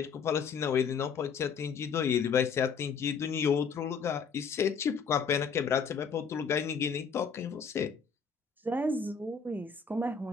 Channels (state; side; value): quieter; right; 6.0 dB